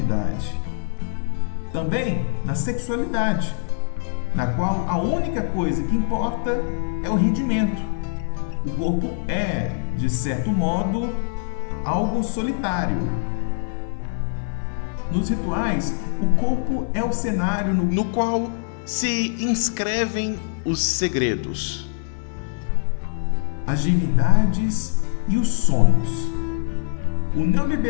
Também na sexualidade, na qual a única coisa que importa é o rendimento. O corpo é, de certo modo, algo solitário. Nos rituais, o corpo é o cenário no qual se inscrevem os segredos, as divindades e os sonhos. O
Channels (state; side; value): silent; right; digital silence